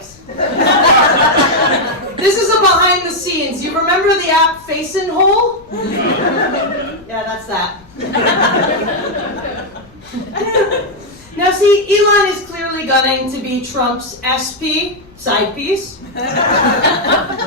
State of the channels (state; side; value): noise; left; rumble, 26 dB below the sound